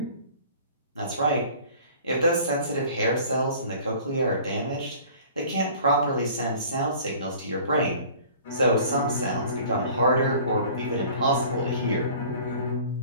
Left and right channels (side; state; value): both; inverted; correlation -0.47